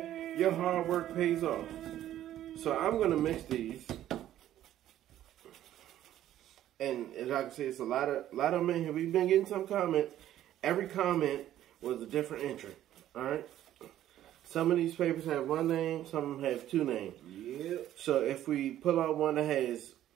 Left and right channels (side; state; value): left; quieter; 12.4 dB